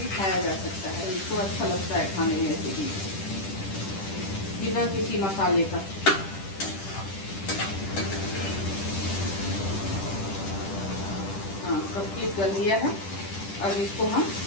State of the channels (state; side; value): late; right; 10 ms